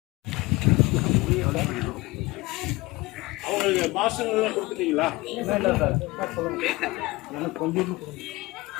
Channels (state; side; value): quieter; right; 21.6 dB